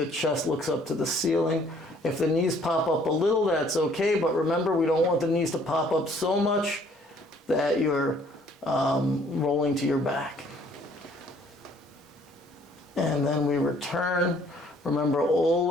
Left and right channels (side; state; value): both; normal; correlation 0.60